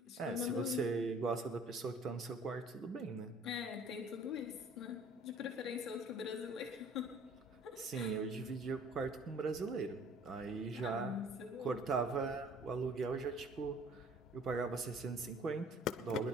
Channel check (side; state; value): both; normal; correlation 0.53